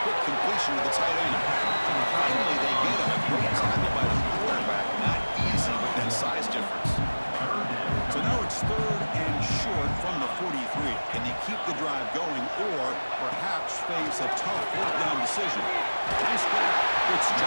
Quick completion to the tight end. And finally, they get him. A great tackle by the quarterback. Not easy with that size difference. So now it's third and short from the 43.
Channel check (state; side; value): inverted; both; correlation -1.00